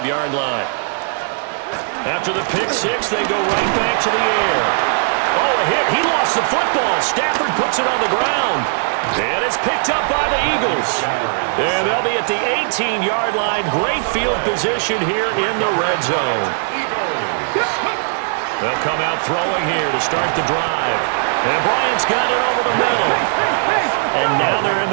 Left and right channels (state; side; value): silent; left; digital silence